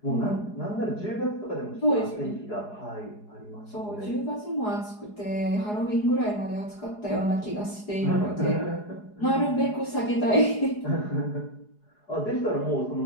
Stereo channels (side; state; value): right; late; 4.8 ms